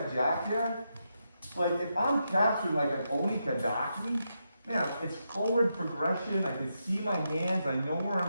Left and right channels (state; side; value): inverted; both; correlation -0.84